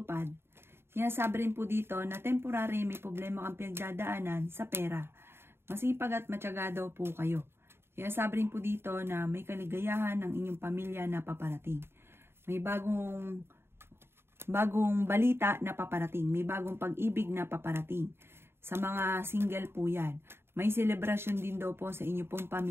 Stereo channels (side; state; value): left; late; 0.11 ms